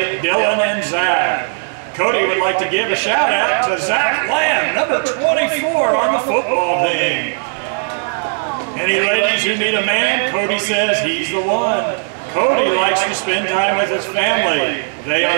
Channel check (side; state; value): left; silent; digital silence